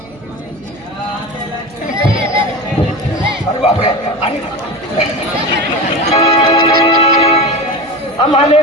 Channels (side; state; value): right; noise; hum, 24 dB below the sound